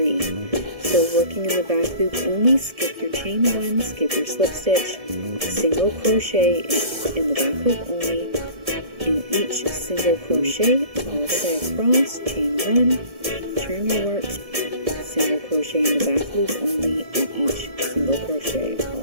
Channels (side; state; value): left; late; 1.7 ms